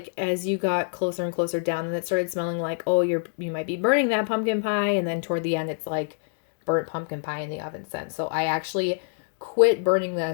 as you got closer and closer down, and it started smelling like, oh, you might be burning that pumpkin pie. And then toward the end, it's like burnt pumpkin pie in the oven scent. So I actually quit burning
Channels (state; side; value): silent; right; digital silence